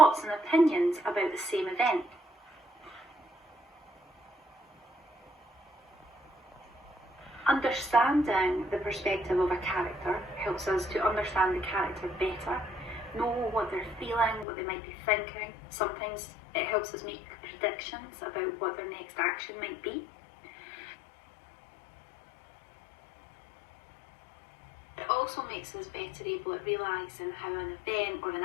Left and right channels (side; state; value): right; drops out; at 14.5 s